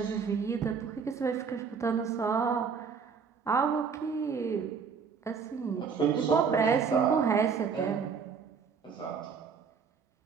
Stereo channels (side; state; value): left; quieter; 6.0 dB